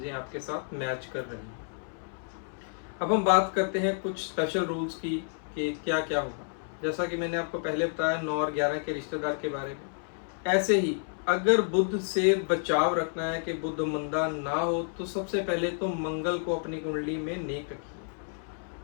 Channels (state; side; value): silent; right; 58 dB below the other